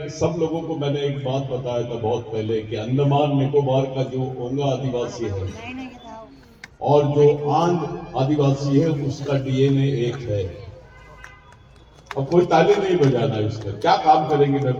सब लोगों को मैंने एक बात बताया था बहुत पहले कि अंडमान निकोबार का जो ओंगा आदिवासी है और जो आंध आदिवासी है उसका डीएनए एक है. अब कोई ताली नहीं बजाना इस पर. क्या काम करेंगे मैं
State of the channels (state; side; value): identical; both; correlation 1.00